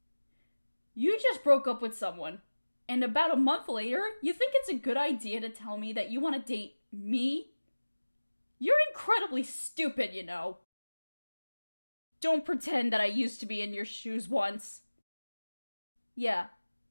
You just broke up with someone, and about a month later, you think it's a good idea to tell me that you want to date me? You're incredibly stupid, you know. Don't pretend that I used to be in your shoes once. Yeah,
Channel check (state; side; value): inverted; both; correlation -1.00